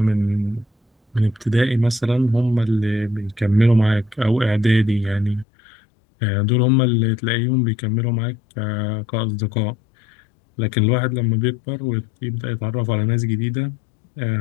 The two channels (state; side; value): drops out; right; at 5.5 s